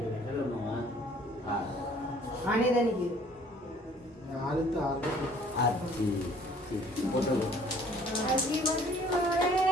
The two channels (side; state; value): both; normal; correlation 0.56